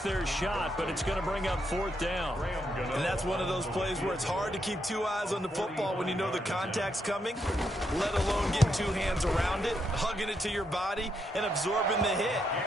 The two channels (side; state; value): both; normal; correlation 0.79